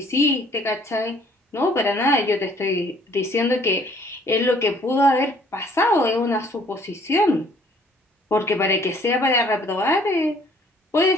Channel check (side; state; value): both; normal; correlation 0.59